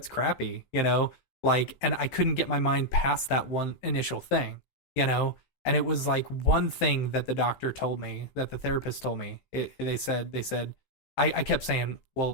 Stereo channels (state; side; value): late; right; 15 ms